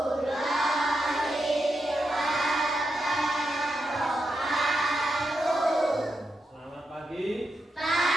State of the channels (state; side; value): normal; both; correlation 0.85